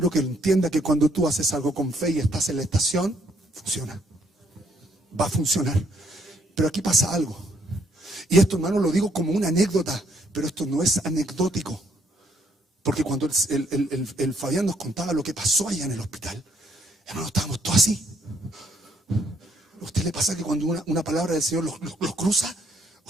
que entienda que cuando tú haces algo con fe y estás en la estación, funciona. Va a funcionar. Pero aquí pasa algo. Y esto, hermano, lo digo como una anécdota, pero esto no es anecdótico. Porque cuando el Fabián nos contaba lo que pasó allá en el hospital, hermano, estábamos todos así. ¿A usted le pasa que cuando una palabra del Señor los cruza,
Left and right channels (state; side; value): normal; both; correlation 0.69